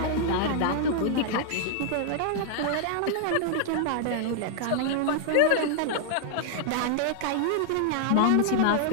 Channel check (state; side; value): different; both; correlation 0.00